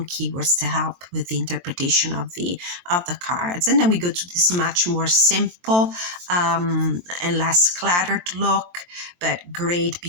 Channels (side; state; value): left; late; 23 ms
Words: keywords to help with the interpretation of the cards. And then we go to this much more simple and less cluttered look, but great